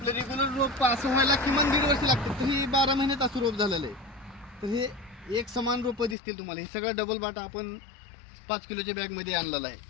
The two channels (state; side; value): drops out; right; at 6.2 s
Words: रेग्युलर रोप असं व्हायला किमान 1.5 वर्ष लागतं, तर ही 12 महिन्यात असं रोप झालेलं आहे। तर हे एक समान रोपं दिसतील तुम्हाला। हे सगळं डबल बाटा आपण 5 किलोच्या बॅगमध्ये आणलेलं आहे।